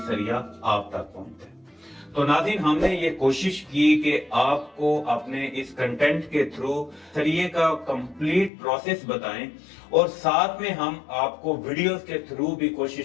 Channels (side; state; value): right; drops out; at 8.5 s